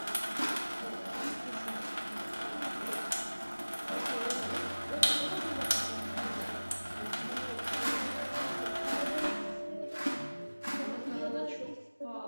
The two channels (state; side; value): inverted; both; correlation -1.00